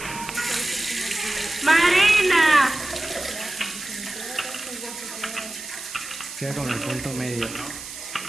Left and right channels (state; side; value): noise; right; hiss, 11 dB below the sound